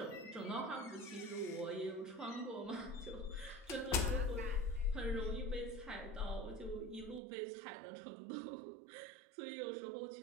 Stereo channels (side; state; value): left; drops out; at 7.2 s